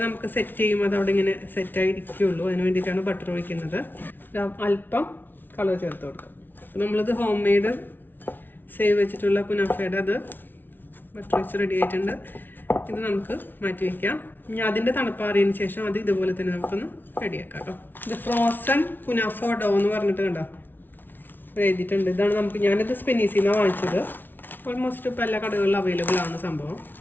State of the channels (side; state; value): right; late; 0.093 ms